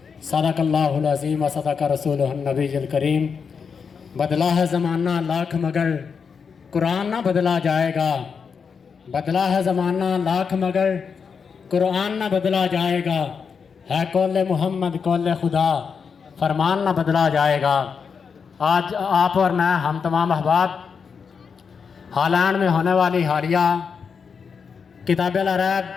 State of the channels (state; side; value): quieter; right; 6.0 dB